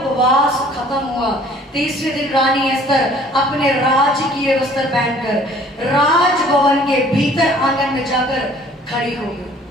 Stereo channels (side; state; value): both; normal; correlation 0.54